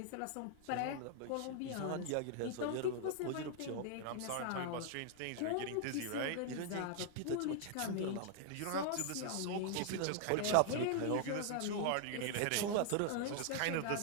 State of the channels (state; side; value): different; both; correlation 0.00